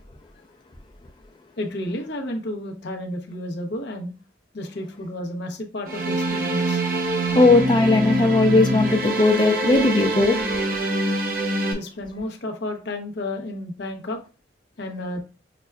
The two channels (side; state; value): both; normal; correlation 0.62